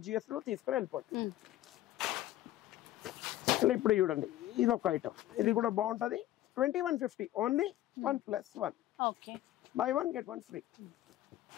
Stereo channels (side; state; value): right; quieter; 14.3 dB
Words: GST లో తీసుకొని వెళ్ళిపోతుంది. ఇప్పుడు చూడండి ఇది ఒక ఐటమ్, ఇది కూడా బాగుంటది. 2150 ఓన్లీ 1+1. By 1 get 1 free.